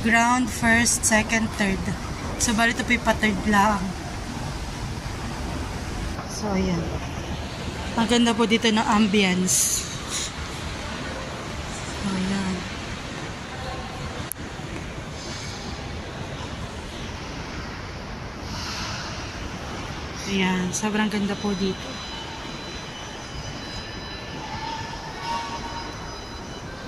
first, second, third. So, bali ito po yung pa-third lang. So, ayan. Ang ganda po dito ng ambience. So, ayan. Ayan, sobrang ganda po dito.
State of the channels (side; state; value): both; identical; correlation 1.00